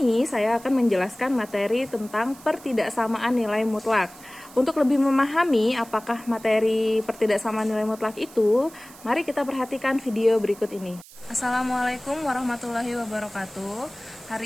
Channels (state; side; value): noise; right; hiss, 21 dB below the sound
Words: saya akan menjelaskan materi tentang pertidaksamaan nilai mutlak. Untuk lebih memahami apakah materi pertidaksamaan nilai mutlak itu, mari kita perhatikan video berikut ini. Assalamualaikum warahmatullahi wabarakatuh.